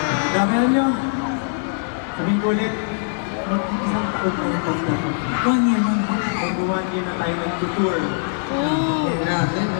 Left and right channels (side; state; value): right; silent; 58 dB below the other